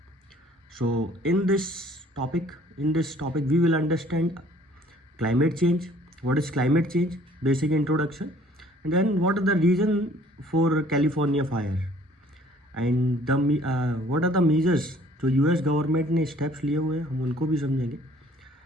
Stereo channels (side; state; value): both; normal; correlation 0.56